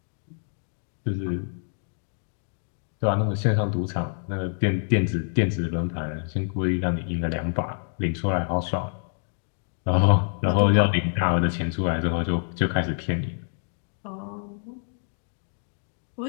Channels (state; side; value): silent; right; digital silence